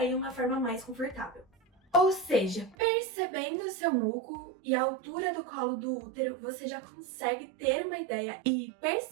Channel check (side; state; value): left; drops out; at 2.8 s